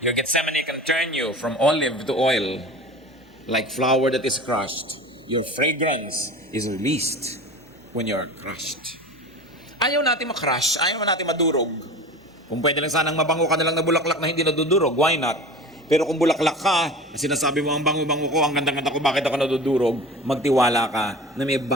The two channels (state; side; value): normal; both; correlation 0.35